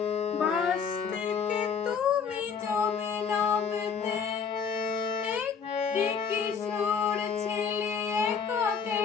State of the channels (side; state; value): right; quieter; 6.4 dB